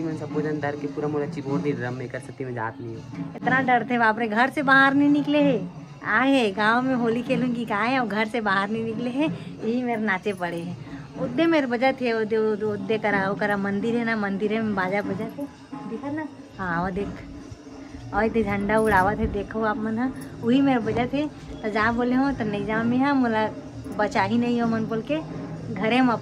के पूरा मोला चिपोड़ दी ड्रम में कर सकती मैं जात नहीं हूँ। इतना डर थे बाप रे, घर से बाहर नहीं निकले है। आए है गाँव में होली खेलूंगी कहा है, और घर से बाहर नहीं निकले है, यही मेरे नाचे पड़े हैं। उद्दे मेरे बजा थे उद्दे करा मंदिर है ना, मंदिर में बाजा बजा थे दिखा ना। हाँ वो देख और इतने झंडा उड़ावा थे देखो आप मन। हाँ वही मेरे बजा थे। तो जा बोले हो तो नहीं जा में। हाँ मोला बचा ही नहीं हो मन बोल के घरे में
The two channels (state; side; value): identical; both; correlation 1.00